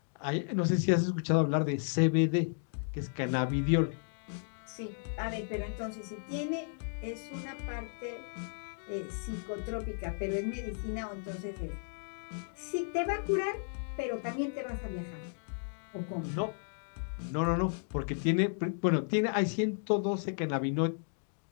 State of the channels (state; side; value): silent; right; digital silence